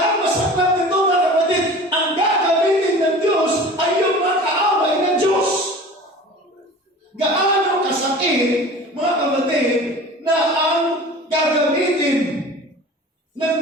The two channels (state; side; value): normal; both; correlation 0.40